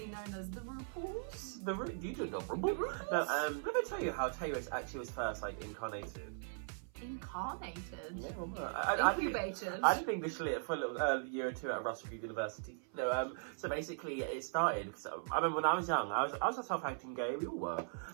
known as the RuPauls. You don't know RuPaul? No, let me tell you how Tayris actually was first, like, incarnated. Incarnated? Yeah, well, Incubated? I did English lit for a little year or two at Russell University. No, so basically it started, because I remember when I was young, I was a self-acting gay, we all were.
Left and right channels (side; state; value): left; silent; 52 dB below the other